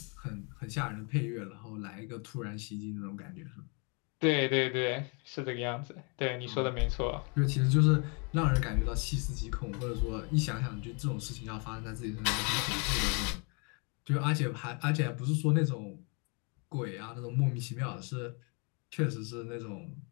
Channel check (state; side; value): quieter; right; 34.3 dB